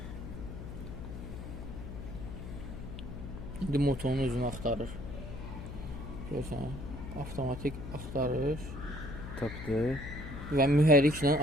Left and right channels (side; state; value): left; noise; hum, 9 dB below the sound